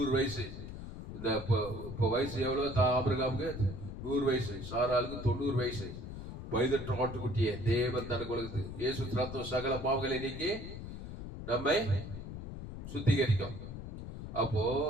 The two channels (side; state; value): left; noise; rumble, 9 dB below the sound